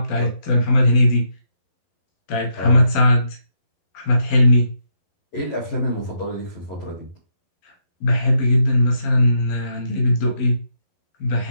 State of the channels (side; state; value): right; late; 12 ms